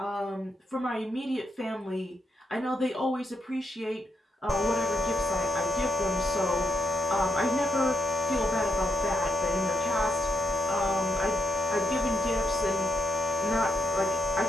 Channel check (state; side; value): normal; both; correlation 0.82